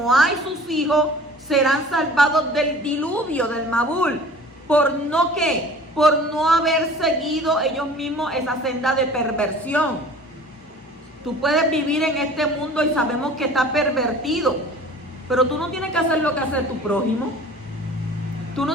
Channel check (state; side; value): normal; both; correlation 0.45